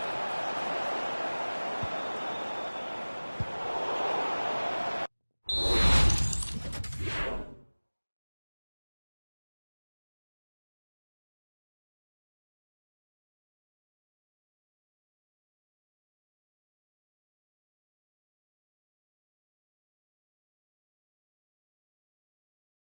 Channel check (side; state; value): both; inverted; correlation -1.00